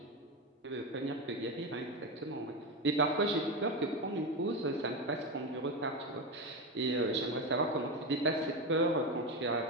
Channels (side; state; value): both; normal; correlation 0.15